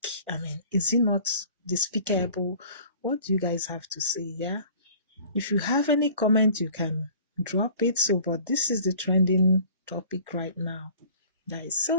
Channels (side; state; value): both; inverted; correlation -0.48